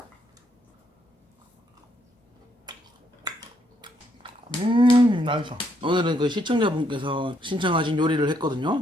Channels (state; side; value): normal; both; correlation 0.73